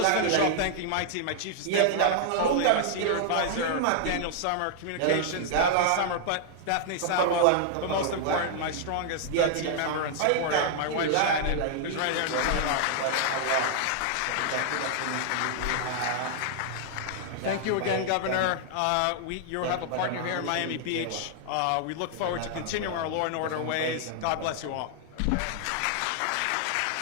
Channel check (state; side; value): different; both; correlation -0.01